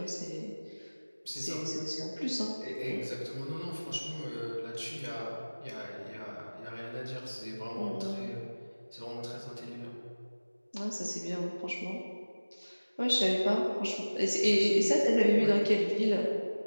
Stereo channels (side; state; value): both; inverted; correlation -1.00